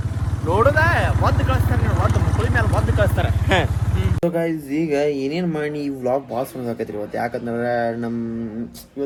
ನೋಡುದ ಒದ್ದು ಕಳಿಸ್ತಾರೆ ಒದ್ದು ಮಕ್ಕಳ ಮೇಲೆ ಒದ್ದು ಕಳಿಸ್ತಾರೆ ಸೊ ಗೈಸ್ ಈಗ ಏನೇನು ಮಾಡಿ ಈ ವ್ಲಾಗ್ ಭಾಳ ಸುಂದರ ಆಕೈತ್ರಿ ಇವತ್ತು ಯಾಕಂದ್ರೆ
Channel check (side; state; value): both; identical; correlation 1.00